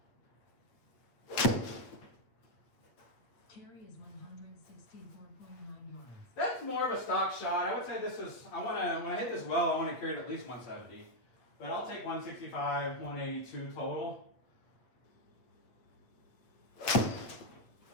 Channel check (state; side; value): late; right; 8.4 ms